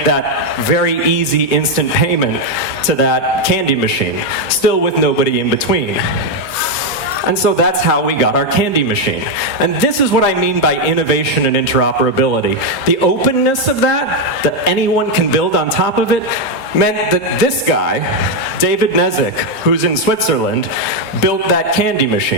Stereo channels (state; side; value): normal; both; correlation 0.03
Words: that very easy instant payment to that candy machine, still with nobody in between. And so that's how we got our candy machine. And this is what I mean by innovation and interoperability. The openness of that anyone can build on top of it, meant that this guy, David Nezik, who's in Switzerland, built that candy